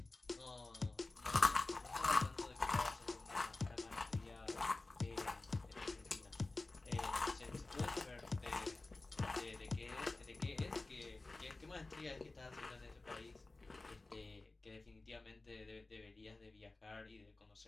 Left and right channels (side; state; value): right; quieter; 3.2 dB